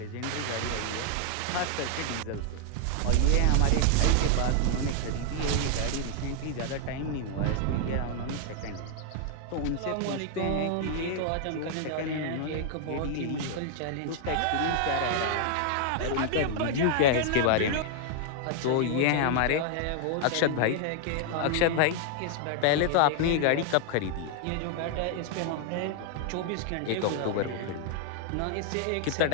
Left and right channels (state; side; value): different; both; correlation 0.00